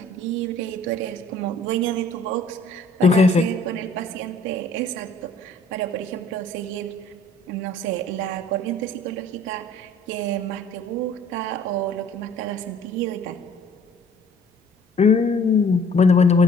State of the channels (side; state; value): both; normal; correlation 0.55